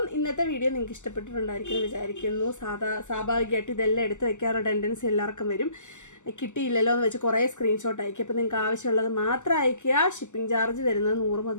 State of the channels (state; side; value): late; right; 0.84 ms